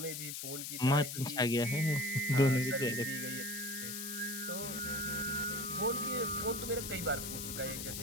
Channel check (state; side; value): noise; left; hiss, 6 dB below the sound